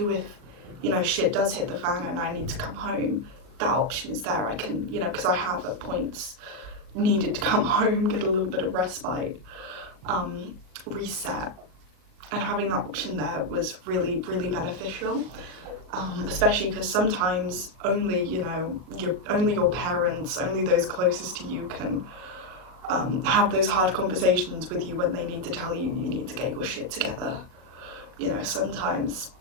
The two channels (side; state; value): left; late; 39 ms